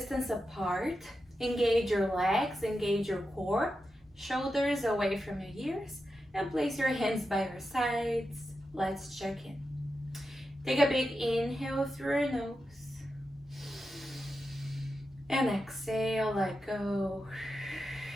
apart, engage your legs, engage your core, shoulders away from your ears, and place your hands by your sides. Let's check in. Take a big inhale through your nose. And exhale, let go.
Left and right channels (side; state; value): both; normal; correlation 0.89